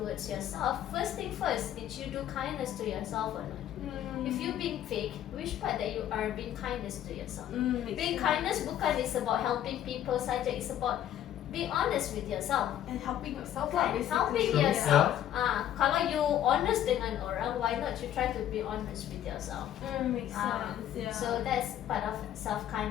yourself, first thing first, did you do kindness to yourself or not? If you being fake, which part that you are being kindness to yourself? Being kindness bukan is about helping people saja, it's about be honest with yourself. And helping yourself Kan? basically. Helping yourself. Kalau you honest dengan orang, why not you try to be honest with yourself? Makes sense. Yeah. So that's part of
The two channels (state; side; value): quieter; right; 11.3 dB